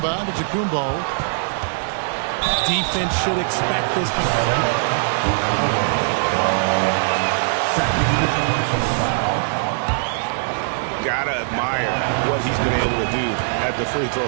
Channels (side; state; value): left; silent; digital silence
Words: Antetokounmpo. Defense should expect this. Gotta admire what he's been able to do at the free throw